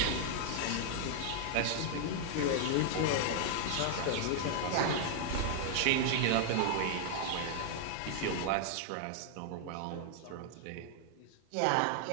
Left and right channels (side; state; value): both; different; correlation 0.00